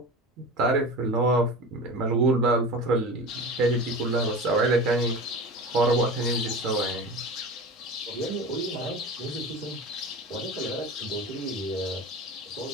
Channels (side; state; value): both; normal; correlation 0.32